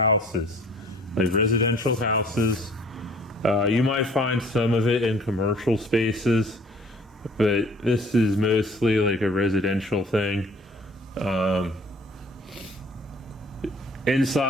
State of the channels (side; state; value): both; normal; correlation 0.53